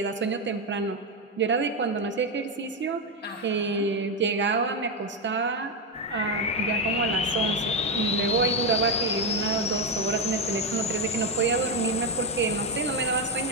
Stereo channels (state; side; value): normal; both; correlation 0.07